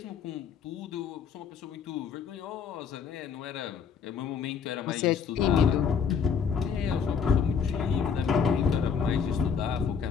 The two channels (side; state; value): right; quieter; 6.5 dB